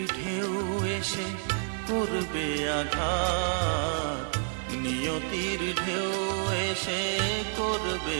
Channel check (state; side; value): silent; left; 58 dB below the other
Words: ঢেউ এসে করবে আঘাত, নিয়তির ঢেউ এসে করবে